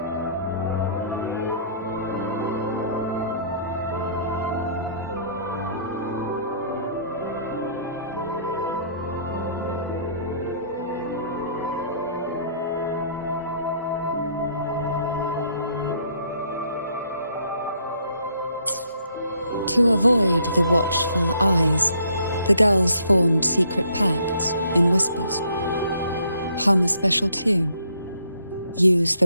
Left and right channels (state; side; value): inverted; both; correlation -0.64